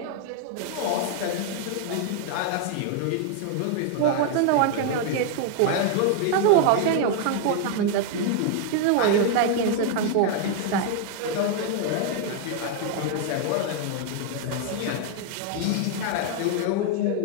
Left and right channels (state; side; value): different; both; correlation 0.00